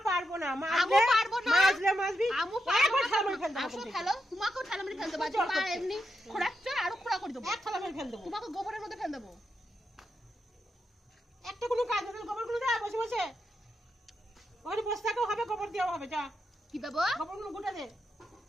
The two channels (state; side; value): normal; both; correlation 0.85